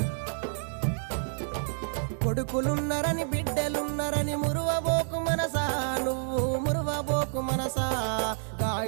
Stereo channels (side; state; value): left; silent; 59 dB below the other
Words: కొడుకులున్నరని బిడ్డలున్నరని మురువబోకు మనసా, నువ్వు మురువబోకు మనసా.